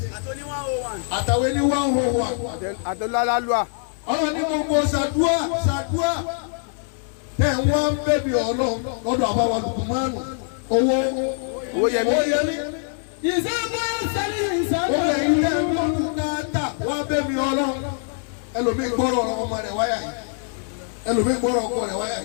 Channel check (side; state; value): right; silent; 63 dB below the other